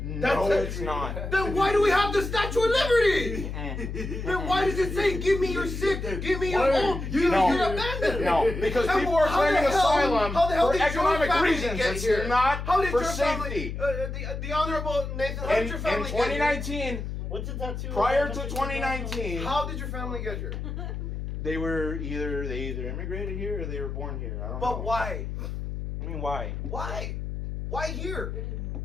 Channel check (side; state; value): left; noise; hum, 5 dB below the sound